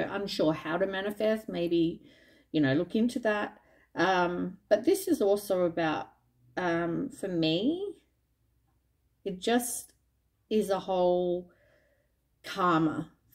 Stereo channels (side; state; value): both; identical; correlation 1.00